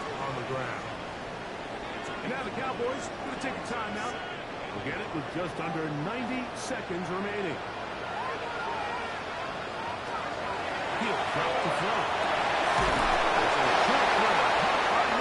the ground. And now the Cowboys going to take a timeout. We'll get it with just under 90 seconds remaining. He'll drop the throw. It's a short throw caught by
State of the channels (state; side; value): identical; both; correlation 1.00